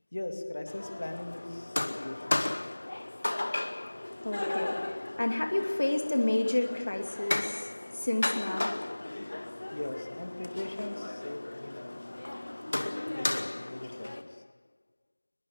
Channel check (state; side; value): inverted; both; correlation -1.00